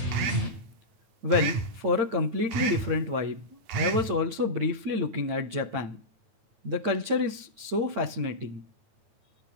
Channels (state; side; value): late; left; 8.8 ms